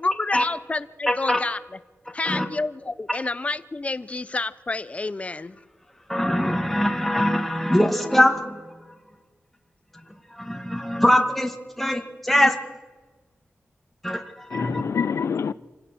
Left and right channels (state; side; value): normal; both; correlation 0.92